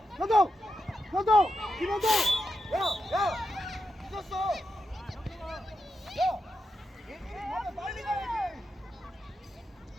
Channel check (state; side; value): normal; both; correlation 0.87